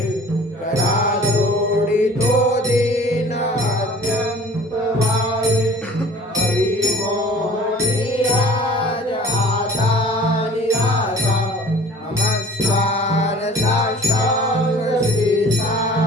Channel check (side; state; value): both; normal; correlation 0.47